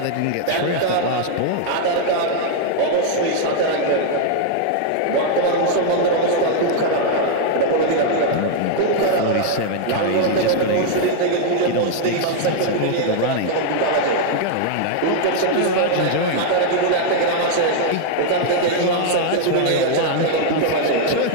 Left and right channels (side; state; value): both; different; correlation 0.00